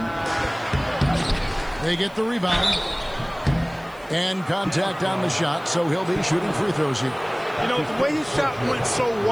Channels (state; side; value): noise; right; hiss, 27 dB below the sound